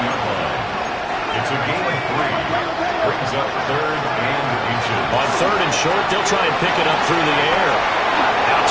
line. It's a gain of 3. Brings up 3rd and inches. On 3rd and short, they'll try and pick it up through the air. Out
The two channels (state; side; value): identical; both; correlation 1.00